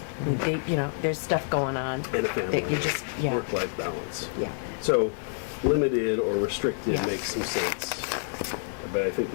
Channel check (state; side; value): silent; right; digital silence